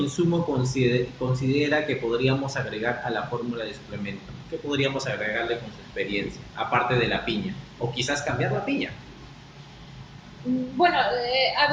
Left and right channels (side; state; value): both; identical; correlation 1.00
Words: considera que podríamos agregar a la fórmula de suplemento? ¿Qué podríamos agregarle con su experiencia, aparte de la piña? O quizás cambiar la piña. Bueno,